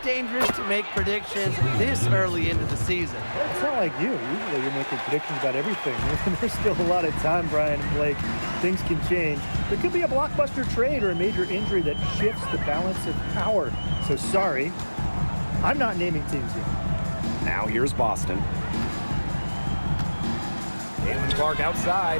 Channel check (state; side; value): inverted; both; correlation -1.00